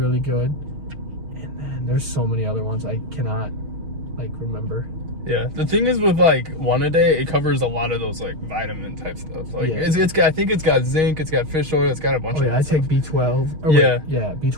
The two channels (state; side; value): late; left; 6.4 ms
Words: good, and then there's so many other ones I cannot, like, remember. Yeah, the thing is with like one a day, it covers a lot of those like vitamin type stuff. Like it's got, I think it's got zinc, it's got fish oil, it's got a bunch of. Yeah, I take B12. Yeah,